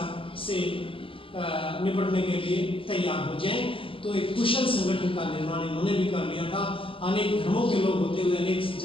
से निपटने के लिए तैयार हो जाए। तो एक कुशल संगठन का निर्माण इन्होंने भी कर लिया था। अनेक धर्मों के लोग होते हुए, अनेक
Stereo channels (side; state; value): right; late; 0.26 ms